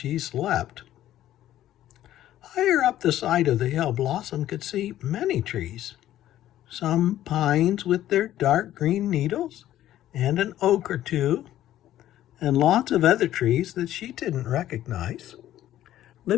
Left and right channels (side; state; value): right; quieter; 12.9 dB